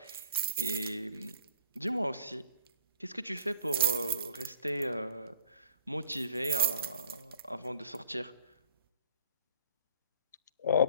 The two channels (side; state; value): both; inverted; correlation -0.52